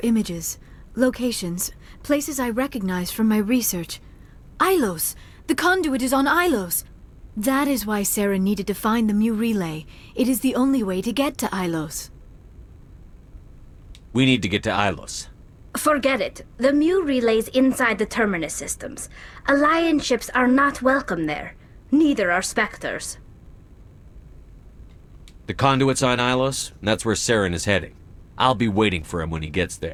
images, locations, places I recognized from my research. Ilos! The conduit is on Ilos! That is why Saren needed to find the Mu relay. It is the only way to get to Ilos. We need to get to Ilos. Forget it. The Mu relay's inside the Terminus systems. Alliance ships are not welcome there. Neither are Spectres. The conduit's on Ilos, and that's where Saren is heading. I'll be waiting for him when he gets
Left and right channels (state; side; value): identical; both; correlation 1.00